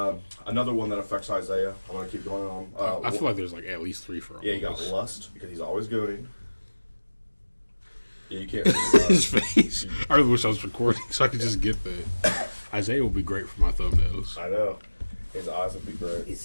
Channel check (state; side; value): inverted; both; correlation -1.00